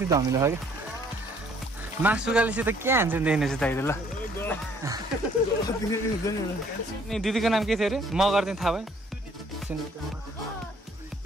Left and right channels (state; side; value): normal; both; correlation 0.61